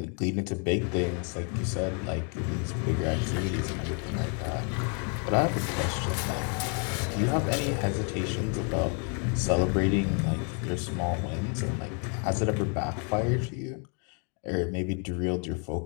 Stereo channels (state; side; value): quieter; right; 39.5 dB